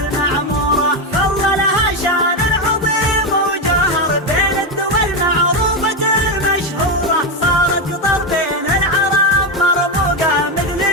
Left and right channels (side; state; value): both; normal; correlation 0.09